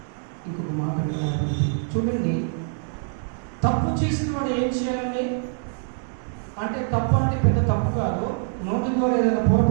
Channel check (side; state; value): left; silent; 59 dB below the other